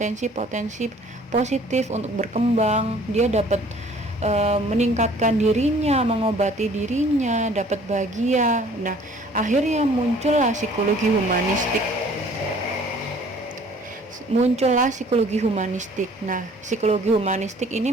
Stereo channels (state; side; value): normal; both; correlation 0.54